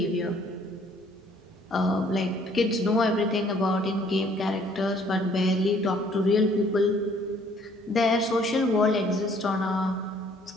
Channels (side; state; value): both; normal; correlation 0.61